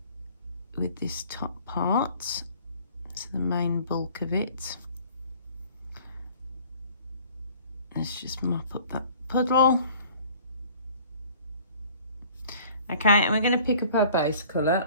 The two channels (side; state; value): both; inverted; correlation -0.51